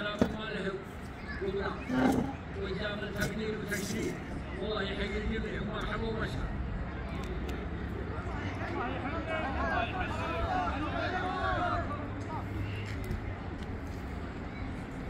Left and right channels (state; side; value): identical; both; correlation 1.00